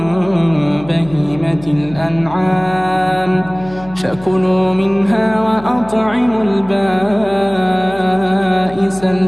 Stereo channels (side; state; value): left; noise; hum, 19 dB below the sound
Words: بهيمة الأنعام فكلوا منها وأطعموا البائس